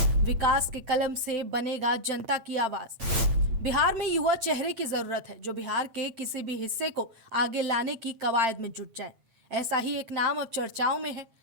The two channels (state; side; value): late; left; 8.8 ms